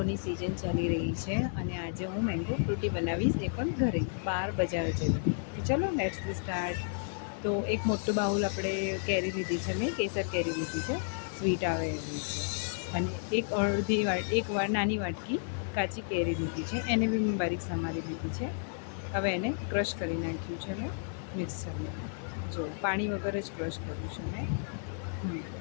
સિઝન ચાલી રહી છે અને આજે હું મેંગો ફ્રૂટી બનાવીશ, એ પણ ઘરે, બહાર બજાર જેવી. તો ચલો લેટ્સ સ્ટાર્ટ. તો એક મોટું બાઉલ આપણે કેરી લીધી છે, મેં કેસર કેરી લીધી છે, સ્વીટ આવે એવી છે. અને એક નાની વાટકી કાચી કેરી લીધી છે, એને બી મેં બારીક સમારી લીધી છે. હવે એને ક્રશ કરી નાખ્યું છે મેં મિક્સરમાં. જો પાણી વગર જ ક્રશ કર્યું છે મેં.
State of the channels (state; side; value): silent; right; digital silence